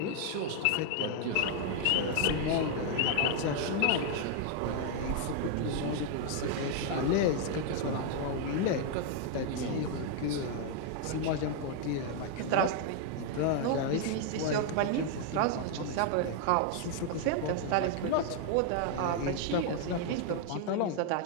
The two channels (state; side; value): different; both; correlation 0.00